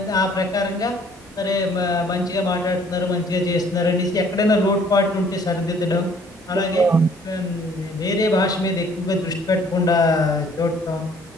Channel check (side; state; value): both; normal; correlation 0.58